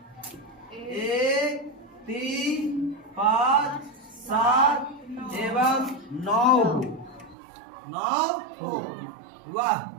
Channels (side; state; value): left; drops out; at 7.4 s